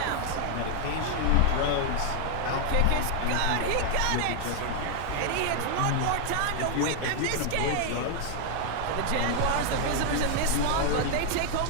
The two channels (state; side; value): different; both; correlation 0.00